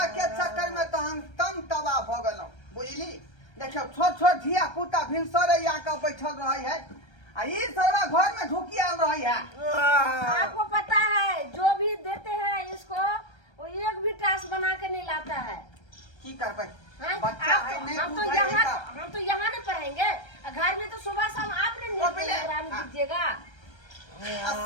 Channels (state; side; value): late; right; 1.3 ms